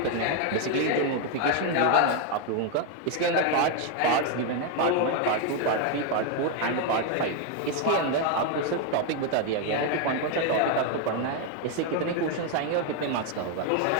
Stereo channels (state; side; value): different; both; correlation 0.01